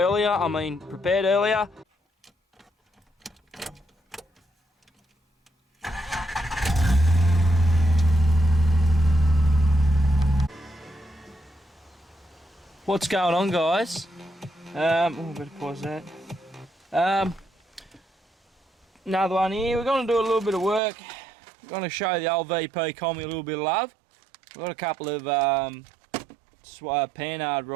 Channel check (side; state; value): left; drops out; at 20.8 s